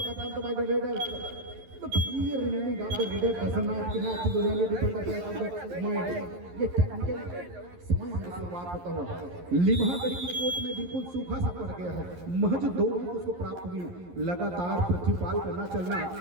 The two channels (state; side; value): late; left; 11 ms